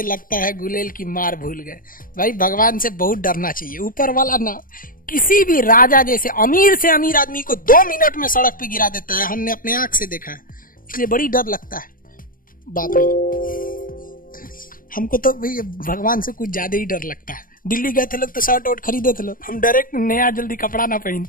लगता है गुलेल की मार भूल गए। भाई भगवान से बहुत डरना चाहिए। ऊपर वाला ना किसी भी राजा जैसे अमीर से अमीर आदमी को 2 मिनट में सड़क पे गिरा देता है, हमने अपने आंख से देखा है, इसलिए बड़ी डर लगता है। बाप रे, हमको तो भाई भगवान से कुछ ज्यादा ही डर लगता है। दिल्ली गए थे लोग तो शर्ट वोट खरीदे थे लोग, हम डायरेक्ट नया जल्दी कपड़ा ना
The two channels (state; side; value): late; right; 0.40 ms